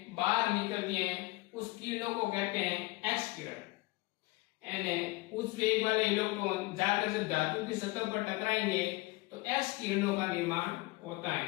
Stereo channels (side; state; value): right; quieter; 22.3 dB